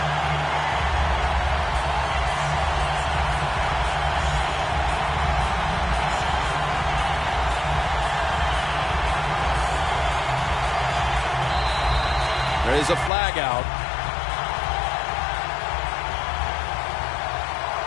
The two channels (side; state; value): right; drops out; at 13.1 s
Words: There is a flag out.